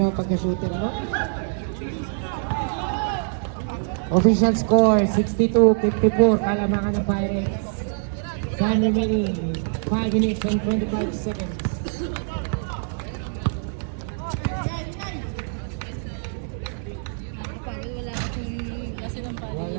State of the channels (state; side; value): silent; left; digital silence